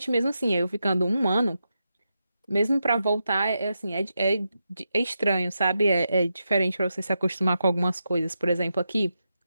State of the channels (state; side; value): inverted; both; correlation -0.87